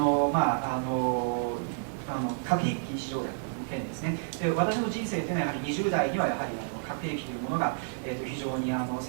核兵器禁止条約の件ですね。で私の人生というのはやはり20代にはやはり核兵器というものが、非常に世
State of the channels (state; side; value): silent; left; digital silence